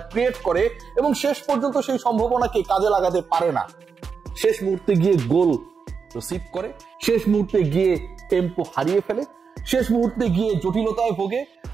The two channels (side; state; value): left; quieter; 5.8 dB